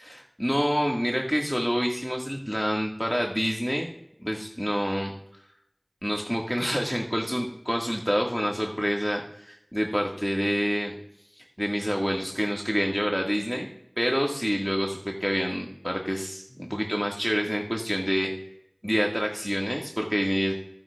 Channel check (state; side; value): identical; both; correlation 1.00